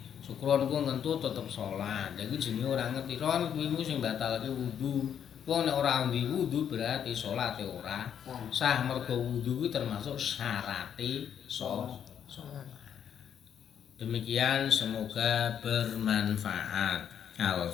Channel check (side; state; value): right; quieter; 8.7 dB